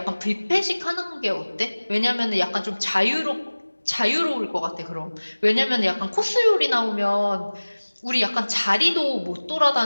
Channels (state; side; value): inverted; both; correlation -1.00